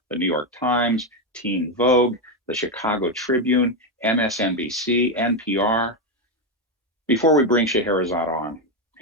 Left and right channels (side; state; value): both; normal; correlation 0.07